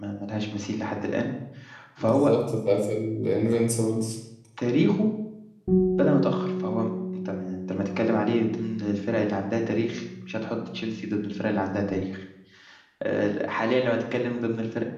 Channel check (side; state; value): both; identical; correlation 1.00